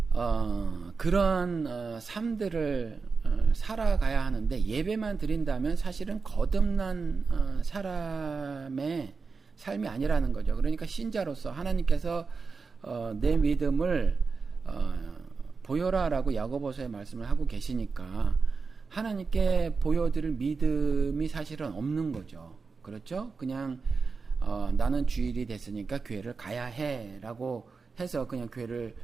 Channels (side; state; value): left; quieter; 4.7 dB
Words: 그런 삶들을 살아가야 하는데, 예배만 드린다면 사실은 거듭난 사람의 삶이 아니라는 거죠. 그러니까 신자로서 하나님께서 내 믿음을 보여라라고 야고보서에 말씀을 하고 계시니까 하나님께 보여드릴 믿음이 사실은 없는 거죠. 그렇죠? 그냥 나는 주일이 됐으니까 교회를 가야 해라고 해서 그냥 교회를